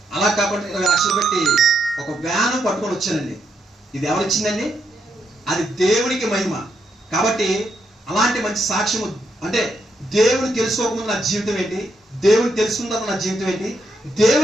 అలా కాకుండా 20 లక్షలు పెట్టి ఒక వ్యాను పట్టుకొని వచ్చానండి. ఇది ఎవరిచ్చిందండి? అది దేవునికి మహిమ. కాబట్టి అలాంటి మంచి సాక్ష్యము అంటే దేవుని తెలుసుకోకముందు నా జీవితం ఏంటి, దేవుని తెలుసుకున్న తర్వాత నా జీవితం ఏంటి,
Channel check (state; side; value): normal; both; correlation 0.79